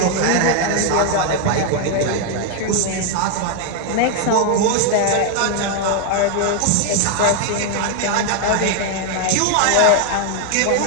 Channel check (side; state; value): both; different; correlation 0.01